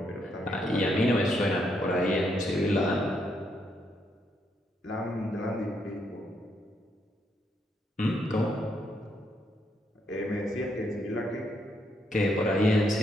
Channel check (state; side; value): normal; both; correlation 0.76